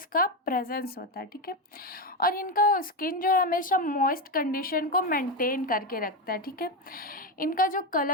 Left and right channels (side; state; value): both; normal; correlation 0.12